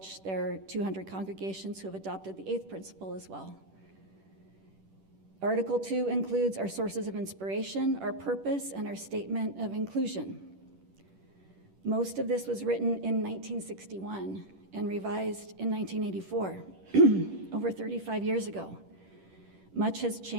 there are 200 congregations who have adopted the 8th principle as well. Article 2 includes our sources of inspiration, our purpose, and our statement of inclusion. Most of this was written in 1961 and revised in 1984, over 35 years ago. Much has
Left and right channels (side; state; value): left; late; 10 ms